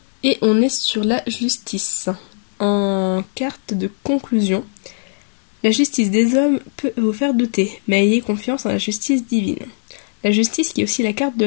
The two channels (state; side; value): silent; right; digital silence